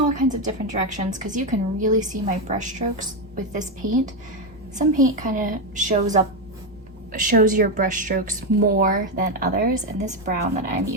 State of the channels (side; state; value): both; normal; correlation 0.08